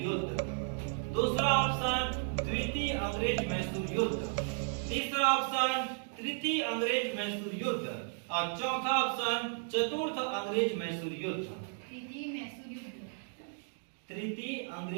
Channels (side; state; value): left; silent; 55 dB below the other